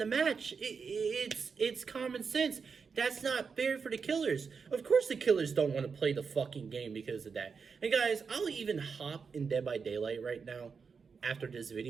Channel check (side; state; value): left; quieter; 5.6 dB